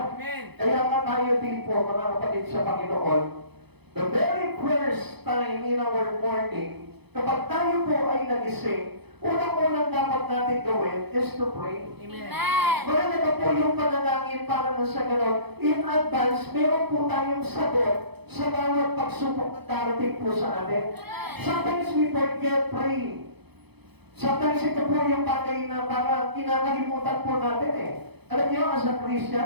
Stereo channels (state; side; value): late; left; 0.98 ms